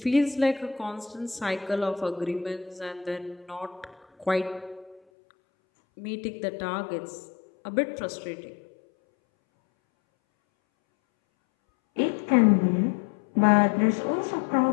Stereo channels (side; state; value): right; drops out; at 5.0 s